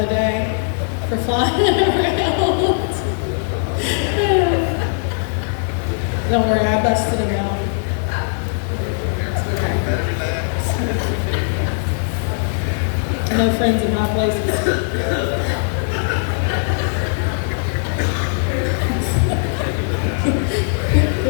day for flying around. Don't worry, I busted him out. No friends in high places.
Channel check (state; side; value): silent; right; 55 dB below the other